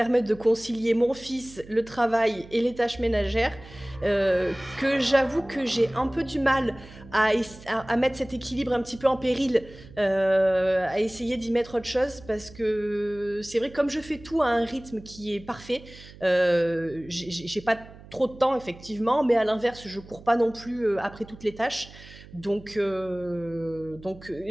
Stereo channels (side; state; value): right; noise; hum, 19 dB below the sound